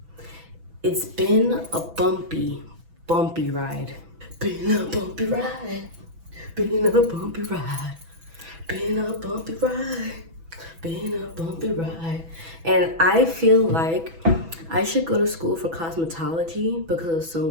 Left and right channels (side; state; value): left; late; 6.1 ms